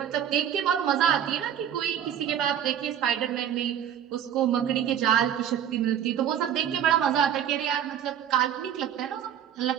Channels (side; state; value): left; quieter; 9.7 dB